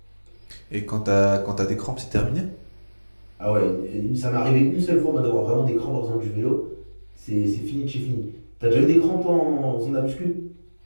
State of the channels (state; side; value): inverted; both; correlation -1.00